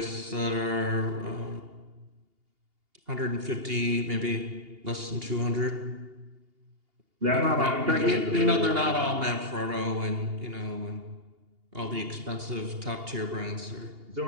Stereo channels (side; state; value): left; late; 2.8 ms